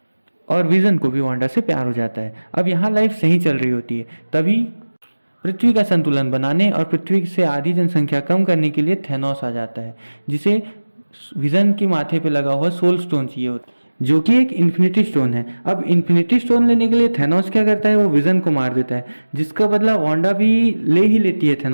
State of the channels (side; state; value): both; inverted; correlation -1.00